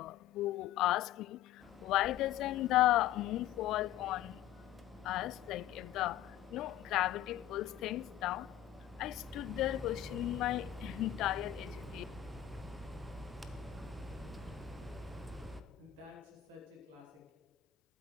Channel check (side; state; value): right; quieter; 12.4 dB